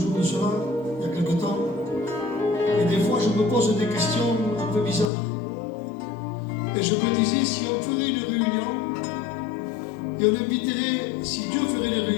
de cela, il y a quelques temps. Et des fois, je me pose des questions un peu bizarres. Et je me disais, si on ferait une réunion, et on inviterait, si Dieu ferait les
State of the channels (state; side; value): drops out; right; at 5.1 s